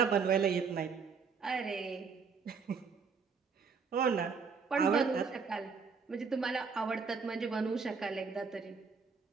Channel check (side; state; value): left; quieter; 5.5 dB